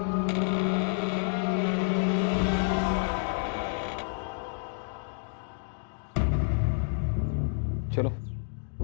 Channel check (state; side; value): silent; right; digital silence